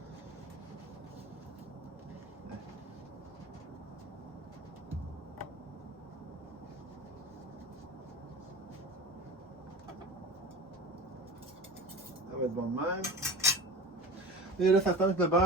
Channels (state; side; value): normal; both; correlation 0.34